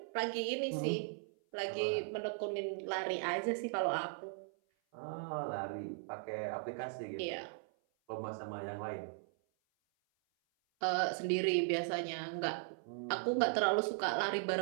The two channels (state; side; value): silent; left; 52 dB below the other